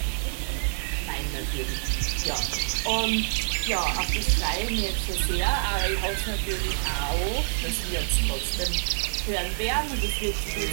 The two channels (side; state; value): left; silent; digital silence